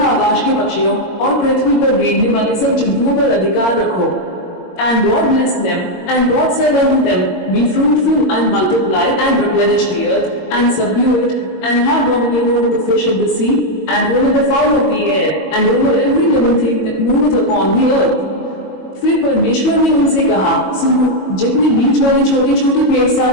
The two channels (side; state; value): right; late; 22 ms